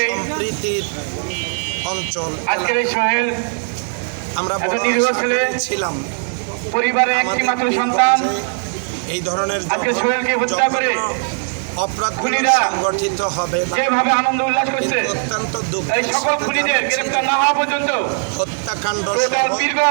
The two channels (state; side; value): silent; left; 56 dB below the other